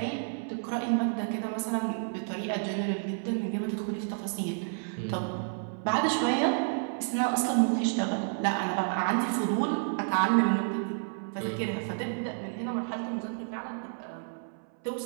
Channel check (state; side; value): silent; left; 58 dB below the other